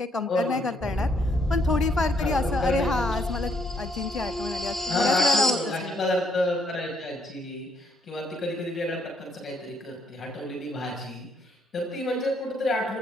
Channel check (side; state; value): both; normal; correlation 0.72